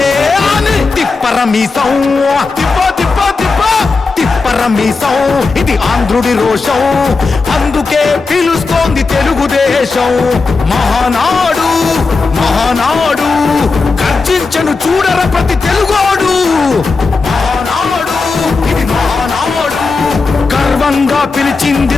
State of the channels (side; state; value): right; quieter; 4.2 dB